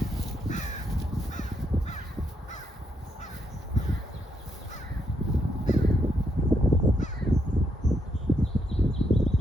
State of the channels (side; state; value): both; normal; correlation 0.77